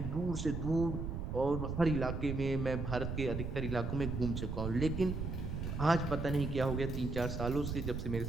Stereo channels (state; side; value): noise; right; rumble, 4 dB below the sound